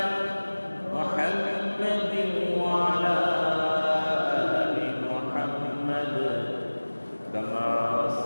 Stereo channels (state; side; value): inverted; both; correlation -1.00